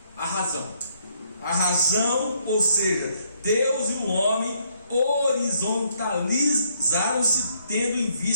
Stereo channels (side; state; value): both; inverted; correlation -0.69